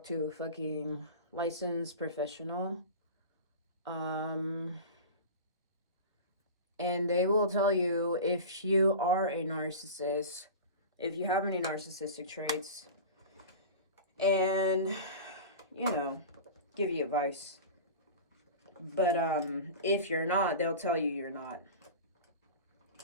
to a fucking licensed professional. And they will tell you if you are a narcissist, if you have any narcissistic traits, and, you know, give you advice. But if you're not, they'll tell you you're not.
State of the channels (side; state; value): both; inverted; correlation -0.31